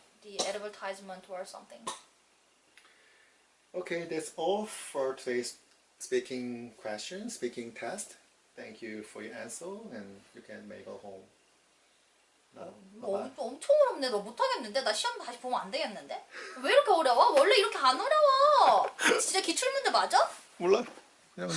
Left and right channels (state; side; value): identical; both; correlation 1.00